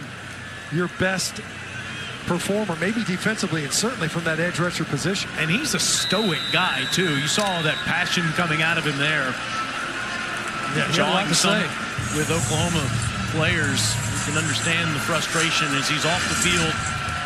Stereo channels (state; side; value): identical; both; correlation 1.00